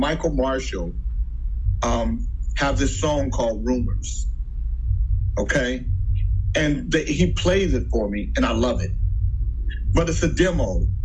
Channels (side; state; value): both; identical; correlation 1.00